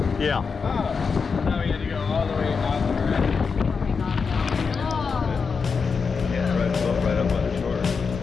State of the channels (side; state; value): right; quieter; 5.3 dB